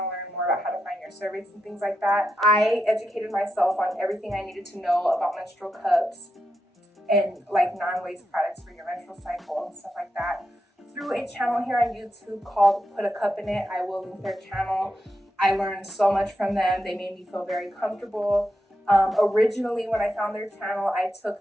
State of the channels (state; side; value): normal; both; correlation 0.86